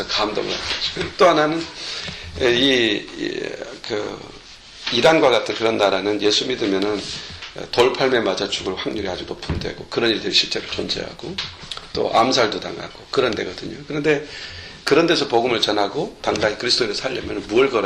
감동을 하시고, 또 하나는, 이란과 같은 그런 나라는 예수 믿으면은 돌팔매 맞아 죽을 확률이 아주 높은 데고, 그런 일들이 실제로 존재하고, 또 암살도 당하고, 그런 데거든요. 그런데, 그런 데서 복음을 전하고 당당히 그리스도인을 살려면 무엇을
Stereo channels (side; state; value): both; identical; correlation 1.00